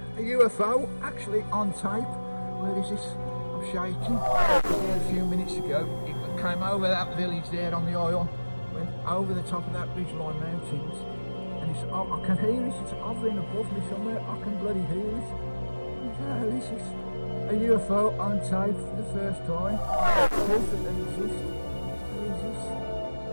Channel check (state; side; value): inverted; both; correlation -1.00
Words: A UFO actually on tape. Where is this? I'm shaking. There a few minutes ago, it came over that village there on the oil, went over the top of that ridgeline mountains, and it's, I can hear it. It's hovering above me somewhere. I can bloody hear it. What the hell is this? A UFO on tape for the first time. Proof that they exist. Where is this?